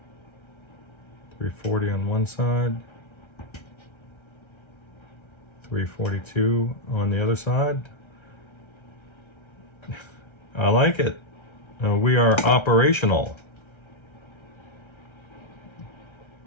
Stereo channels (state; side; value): late; right; 1.3 ms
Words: 340 on one side. 342 on the other side. I like it. We are operational.